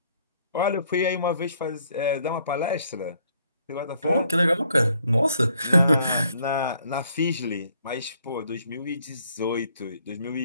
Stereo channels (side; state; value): both; inverted; correlation -0.66